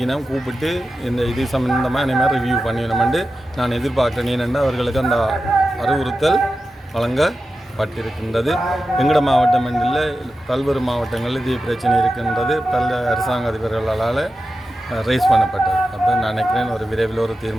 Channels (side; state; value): both; normal; correlation 0.92